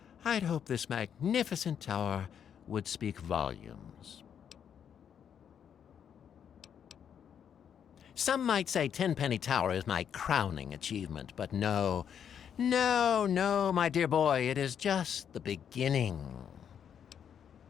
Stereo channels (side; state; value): right; quieter; 8.3 dB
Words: I'd hope this magnificent tower would speak volumes. Some might say Tenpenny Tower is my crowning achievement, but no, my dear boy, it is just the beginning.